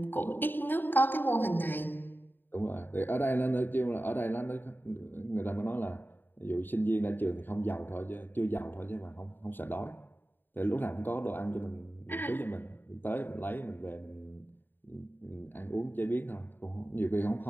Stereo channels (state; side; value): late; right; 0.093 ms